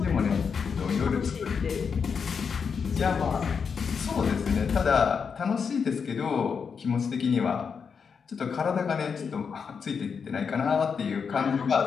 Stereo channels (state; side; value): quieter; right; 6.1 dB